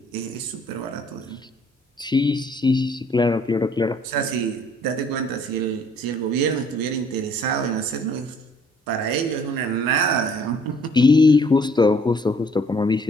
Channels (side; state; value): both; normal; correlation 0.60